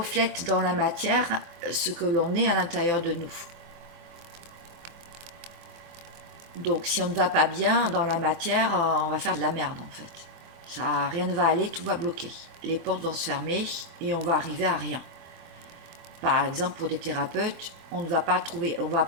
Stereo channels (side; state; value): left; late; 24 ms